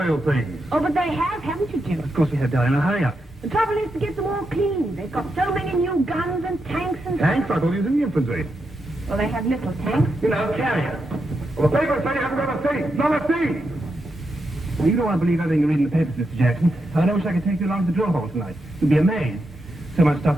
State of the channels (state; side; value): normal; both; correlation 0.85